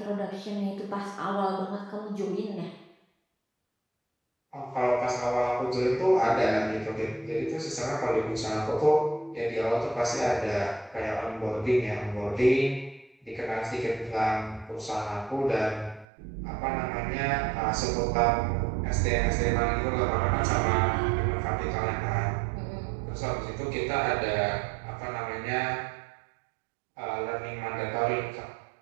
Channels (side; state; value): left; drops out; at 16.1 s